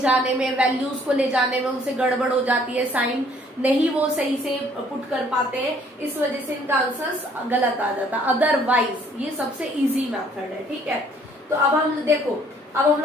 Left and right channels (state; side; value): normal; both; correlation 0.61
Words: में, वैल्यूज को ले जाने में उनसे गड़बड़ हो जाती है, साइन नहीं वो सही से पुट कर पाते हैं, इस वजह से इनका आंसर्स गलत आ जाता है। अदरवाइज ये सबसे इजी मेथड है, ठीक है। तो अब हम देखो, अब हम